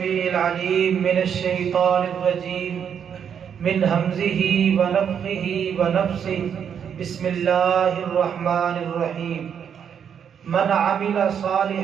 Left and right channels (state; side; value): quieter; left; 7.9 dB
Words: العليم من الشيطان الرجيم من همزه ونفخه ونفسه بسم الله الرحمن الرحيم من عمل